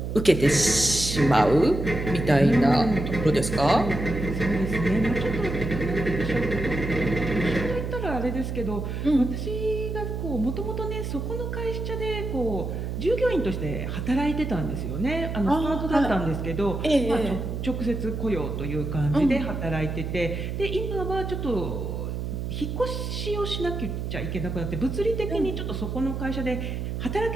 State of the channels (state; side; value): noise; right; hum, 4 dB below the sound